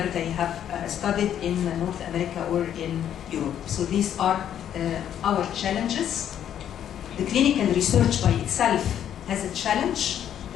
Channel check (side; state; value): right; quieter; 10.0 dB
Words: they have studied in North America or in Europe. So these are our challenges. The clinical research by itself has a challenge.